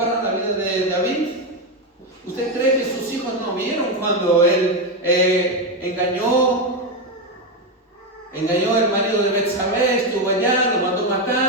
la vida de David? ¿Usted cree que sus hijos no vieron cuando él engañó el marido de Betsabé, estuvo allá, lo mandó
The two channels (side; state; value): both; normal; correlation 0.09